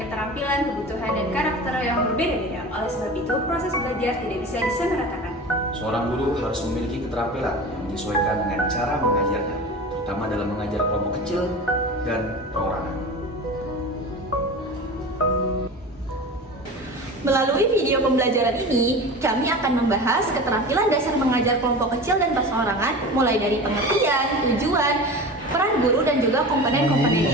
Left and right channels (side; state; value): both; normal; correlation 0.33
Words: keterampilan, kebutuhan, dan karakter yang berbeda-beda. Oleh sebab itu, proses belajar tidak bisa disamaratakan. Seorang guru harus memiliki keterampilan yang menyesuaikan dengan cara mengajarnya, terutama dalam mengajar kelompok kecil dan perorangan. Melalui video pembelajaran ini, kami akan membahas keterampilan dasar mengajar kelompok kecil dan perseorangan, mulai dari pengertian, tujuan, peran guru, dan juga